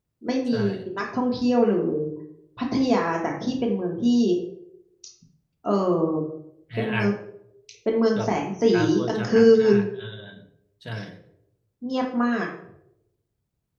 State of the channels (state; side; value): identical; both; correlation 1.00